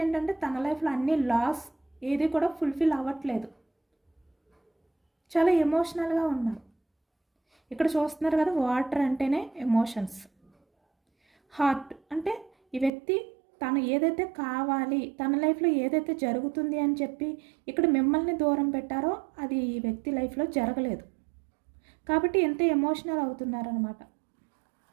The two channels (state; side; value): drops out; left; at 12.9 s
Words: ఏంటంటే తన లైఫ్లో అన్ని లాస్ ఏది కూడా ఫుల్ఫిల్ అవ్వట్లేదు, చాలా ఎమోషనల్గా ఉన్నారు. ఇక్కడ చూస్తున్నారు కదా, వాటర్ అంటేనే ఎమోషన్స్. హార్ట్ అంటే ఈ వ్యక్తి తను ఏదైతే కావాలి, తన లైఫ్లో ఏదైతే జరుగుతుంది అని చెప్పి ఇక్కడ మిమ్మల్ని దూరం పెట్టారో అది ఈ వ్యక్తి లైఫ్లో జరగలేదు కాబట్టి ఎంత ఎమోషనల్ అవుతున్నారనమాట.